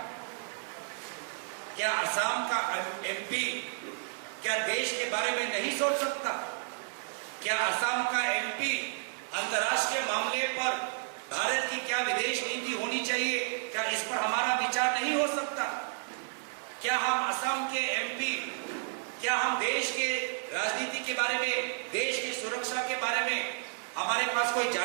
क्या असम का एमपी क्या देश के बारे में नहीं सोच सकता? क्या असम का एमपी अंतर्राष्ट्रीय मामले पर भारत की क्या विदेश नीति होनी चाहिए, क्या इस पर हमारा विचार नहीं हो सकता? क्या हम असम के एमपी, क्या हम देश के राजनीति के बारे में, देश की सुरक्षा के बारे में हमारे पास कोई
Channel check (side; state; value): left; silent; 57 dB below the other